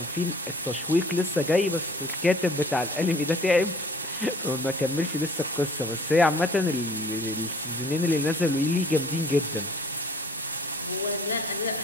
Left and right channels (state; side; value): normal; both; correlation 0.52